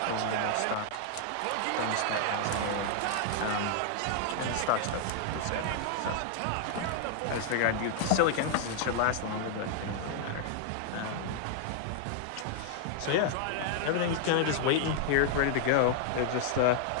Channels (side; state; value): both; different; correlation 0.00